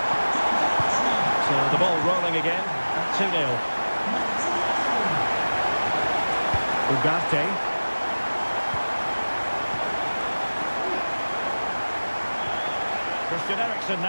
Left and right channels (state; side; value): inverted; both; correlation -1.00